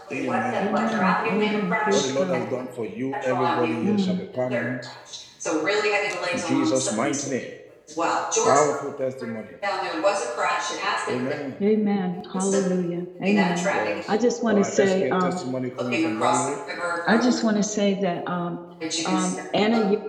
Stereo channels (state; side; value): identical; both; correlation 1.00